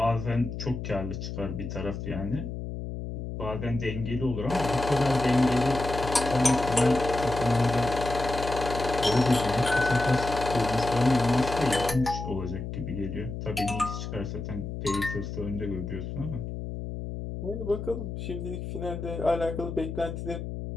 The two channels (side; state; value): left; noise; hum, 6 dB below the sound